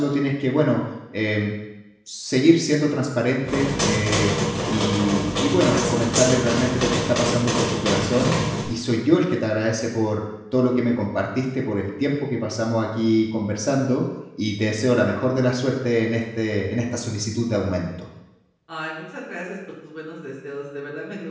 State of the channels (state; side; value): identical; both; correlation 1.00